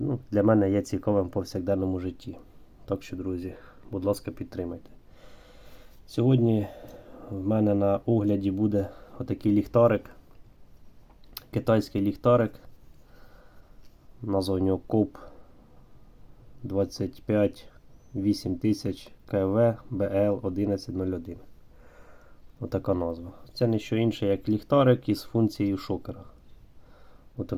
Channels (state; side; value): identical; both; correlation 1.00